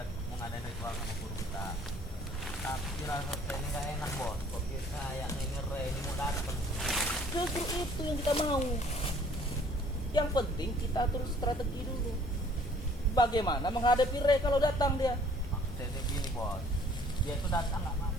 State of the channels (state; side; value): normal; both; correlation 0.57